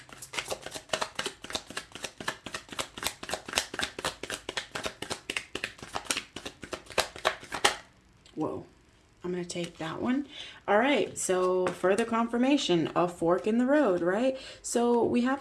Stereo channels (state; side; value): identical; both; correlation 1.00